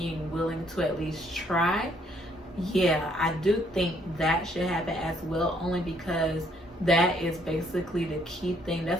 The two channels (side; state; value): both; normal; correlation 0.67